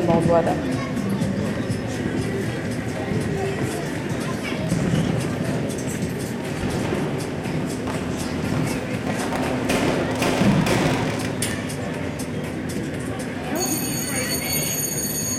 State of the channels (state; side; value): identical; both; correlation 1.00